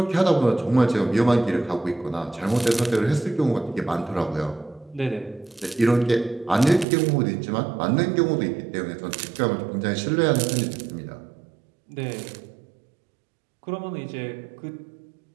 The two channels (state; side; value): drops out; left; at 6.9 s